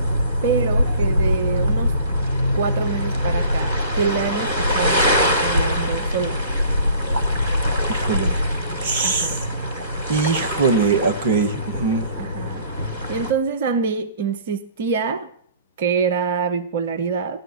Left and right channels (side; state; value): both; inverted; correlation -0.50